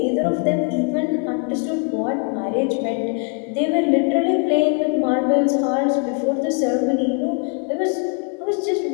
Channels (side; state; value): right; quieter; 33.9 dB